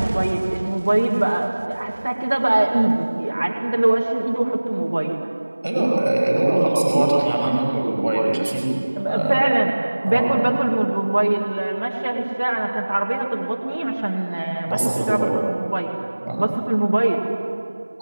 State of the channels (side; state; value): both; inverted; correlation -1.00